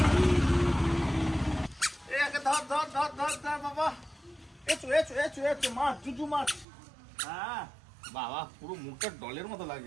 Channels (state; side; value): drops out; left; at 6.7 s